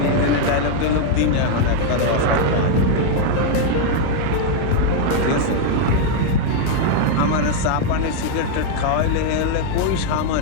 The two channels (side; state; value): both; different; correlation 0.00